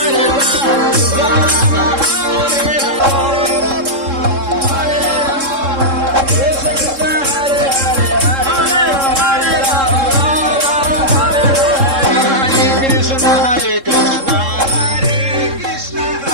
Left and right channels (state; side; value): late; left; 3.7 ms